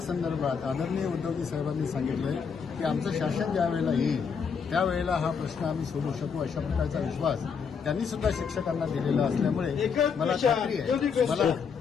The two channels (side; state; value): right; quieter; 6.2 dB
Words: संदर्भात आदरणीय उद्धवजी साहेबांनी सांगितलंय की आमचं शासन ज्या वेळेला येईल त्यावेळेला हा प्रश्न आम्ही सोडवू शकू अशा प्रकारचा विश्वास त्यांनी सुद्धा शिक्षकांना दिलेला असल्यामुळे